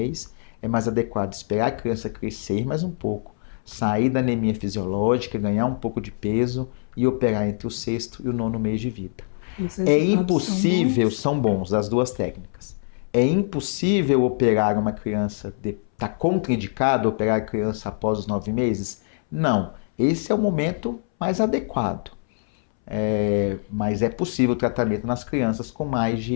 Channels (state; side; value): silent; right; 63 dB below the other